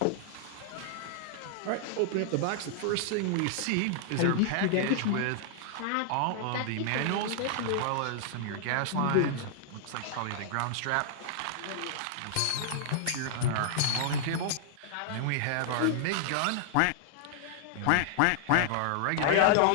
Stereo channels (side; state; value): both; different; correlation -0.01